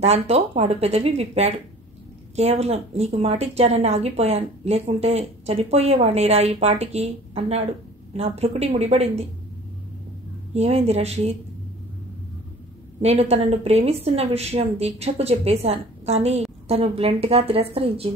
దాంతో వాడు పెదవి విప్పాడు. కేవలం నీకు మాటిచ్చానని ఆగిపోయాను, లేకుంటే చనిపోయేవాణ్ణిరా ఈ పాటికి అన్నాడు. నా భ్రుకుటి ముడిపడింది. ఏమైంది రషీద్? నేను తనను ప్రేమిస్తున్న విషయం దీక్షకు చెప్పేశాను, కానీ తను బ్లంట్గా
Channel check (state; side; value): normal; both; correlation 0.47